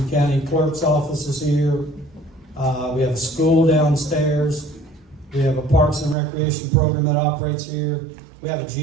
County clerk's offices here. We have a school downstairs. We have a parks and recreation program that operates here. We have a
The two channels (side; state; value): left; drops out; at 6.2 s